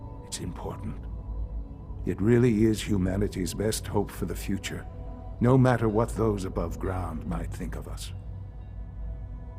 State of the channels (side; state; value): both; identical; correlation 1.00